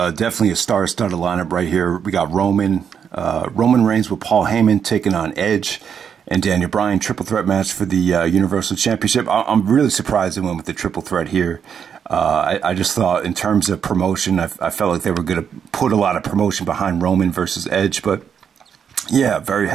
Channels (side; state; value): left; quieter; 7.6 dB